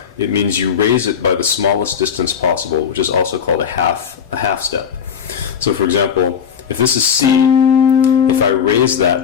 it means you raise it by the smallest distance possible, which is also called a half step. So for example, if this is C, if I raise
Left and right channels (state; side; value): quieter; right; 7.5 dB